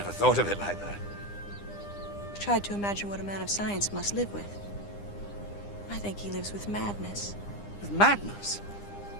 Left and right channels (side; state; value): right; late; 9.9 ms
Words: thought of it like that. tried to imagine what a man of science must live with. I think he lives with madness. With madness?